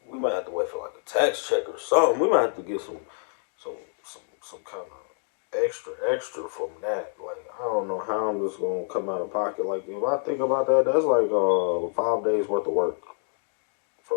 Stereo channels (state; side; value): silent; right; 60 dB below the other